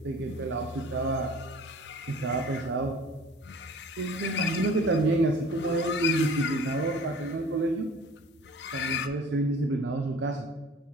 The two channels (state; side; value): normal; both; correlation 0.45